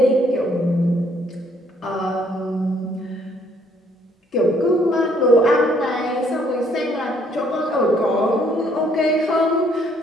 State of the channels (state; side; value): normal; both; correlation 0.66